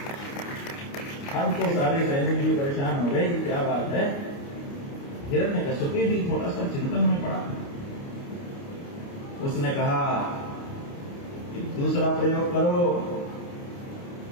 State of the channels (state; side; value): late; right; 29 ms